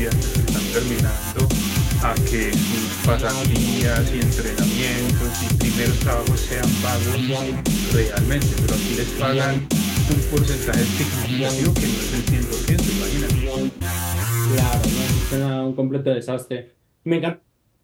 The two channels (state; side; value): identical; both; correlation 1.00